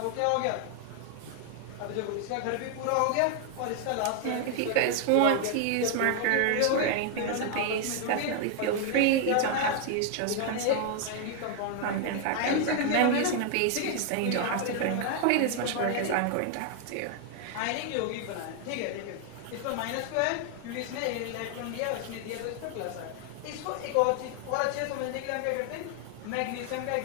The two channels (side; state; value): both; different; correlation 0.00